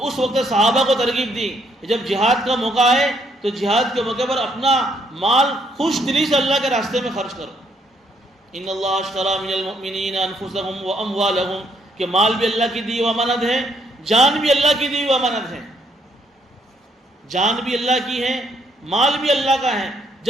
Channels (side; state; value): both; normal; correlation 0.71